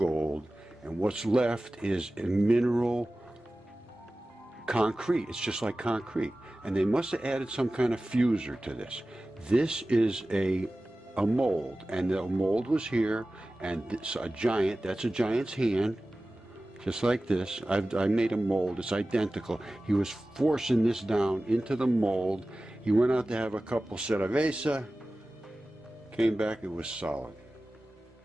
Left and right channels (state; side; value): normal; both; correlation 0.96